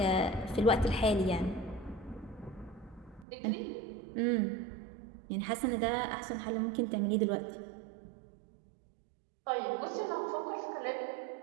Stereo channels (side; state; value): left; drops out; at 3.2 s